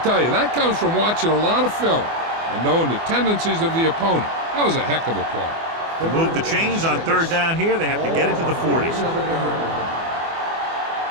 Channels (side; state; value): left; late; 24 ms